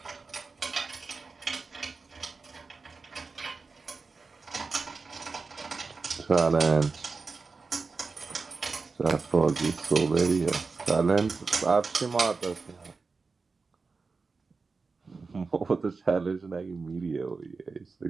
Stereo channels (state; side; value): quieter; left; 4.3 dB